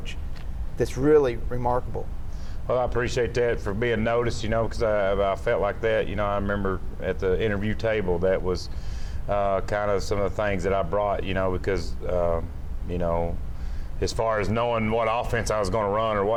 that's really remarkable. Well, I appreciate that for being noticed, because I felt like that. I remember at the interview table, that was kind of some of the things that I brought, because, as far as knowing what offense I was going to run or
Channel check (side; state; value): both; identical; correlation 1.00